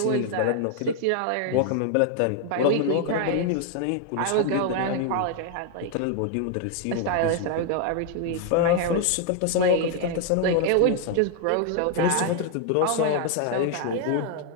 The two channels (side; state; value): both; different; correlation 0.00